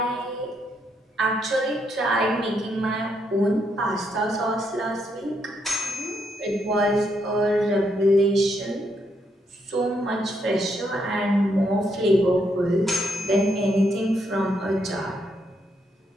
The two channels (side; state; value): both; normal; correlation 0.77